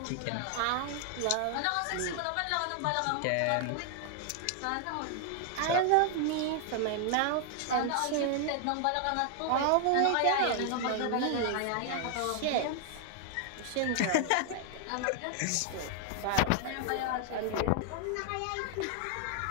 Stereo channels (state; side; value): different; both; correlation 0.00